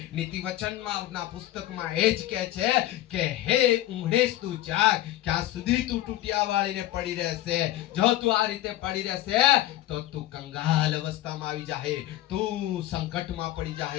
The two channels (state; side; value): quieter; right; 14.5 dB